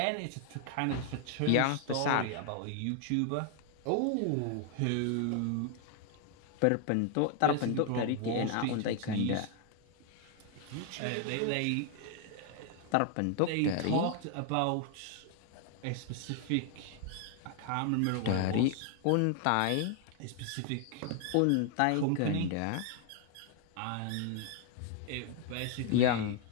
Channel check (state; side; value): different; both; correlation 0.00